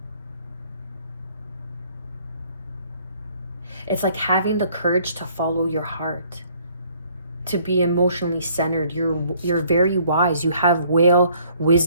It's like having the courage to follow your heart, to be emotionally centered. You're very wise. You have whale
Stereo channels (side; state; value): both; inverted; correlation -0.61